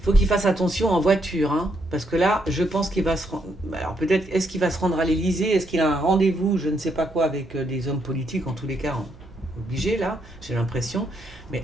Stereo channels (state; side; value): noise; right; hum, 23 dB below the sound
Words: faut qu'il fasse attention en voiture, hein, parce que là, je pense qu'il va se rendre. Alors peut-être, est-ce qu'il va se rendre à l'Élysée? Est-ce qu'il a un rendez-vous, je ne sais pas quoi, avec des hommes politiques, en tous les cas, obligé là, j'ai l'impression.